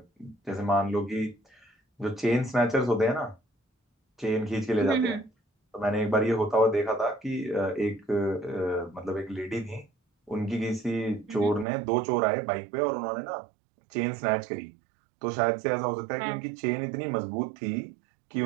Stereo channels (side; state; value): left; drops out; at 11.7 s